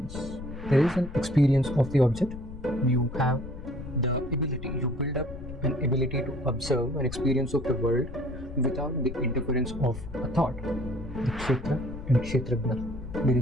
There is an experience of the object. You have the ability, you build up an ability to observe an experience of the world without the interference of a thought. The kshetra and kshetragna. There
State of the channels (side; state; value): left; noise; rumble, 11 dB below the sound